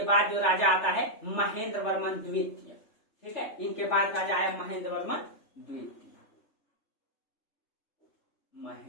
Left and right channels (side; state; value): right; late; 3.4 ms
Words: बाद जो राजा आता है महेंद्र वर्मन द्वितीय। ठीक है, इनके बाद राजा आया महेंद्र वर्मन द्वितीय,